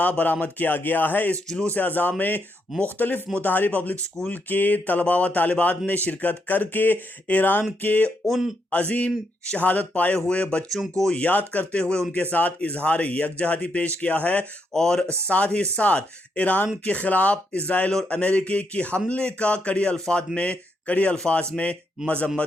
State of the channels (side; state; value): both; normal; correlation 0.79